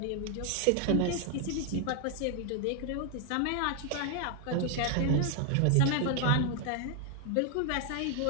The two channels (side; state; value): both; different; correlation 0.00